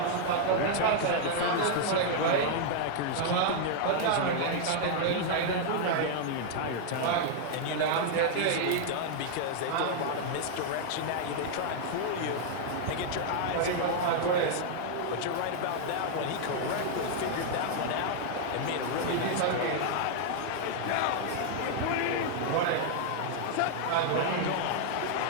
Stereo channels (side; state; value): both; different; correlation 0.00